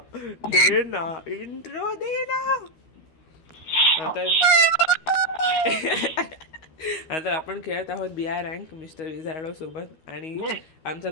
दे ना इंट्रो दे ना. आता आपण खेळत आहोत BI रँक मिस्टर विझार्डो सोबत आणि आमच्या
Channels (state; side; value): late; right; 12 ms